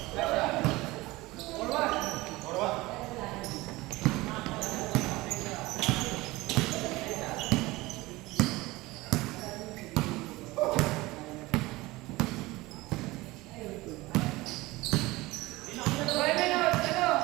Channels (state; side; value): quieter; left; 20.4 dB